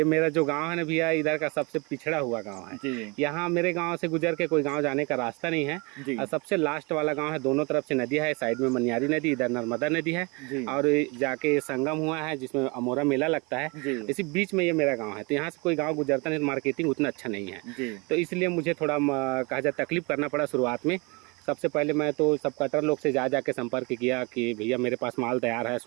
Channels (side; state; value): left; quieter; 28.6 dB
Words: मेरा जो गाँव है ना भैया, इधर का सबसे पिछड़ा हुआ गाँव है। यहाँ मेरे गाँव से गुजर के कोई गाँव जाने का रास्ता नहीं है, और सबसे लास्ट वाला गाँव है। दोनों तरफ से नदी है, साइड में मनियारी नदी, इधर नर्मदा नदी है, और जाके संगम हुआ है जिसमें अमोरा मेला लगता है। इसी बीच में ये मेरा गांव है, तो यहाँ से कोई गांव गुजरता नहीं, मार्केटिंग उतना अच्छा नहीं है तो इसलिए मुझे थोड़ा कहा जाए तकलीफ करना पड़ा शुरुआत में। सबसे पहले मैं तो सब कटर लोग से जाके संपर्क किया कि भैया मेरे पास माल तैयार है,